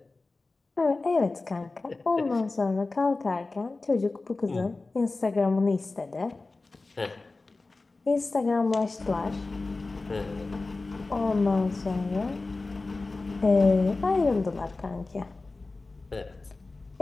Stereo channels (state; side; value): quieter; right; 3.5 dB